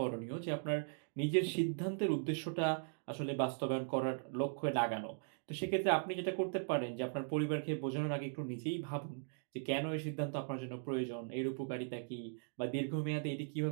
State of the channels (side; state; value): left; silent; digital silence